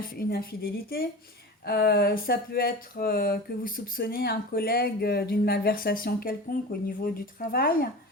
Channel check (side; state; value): both; normal; correlation 0.32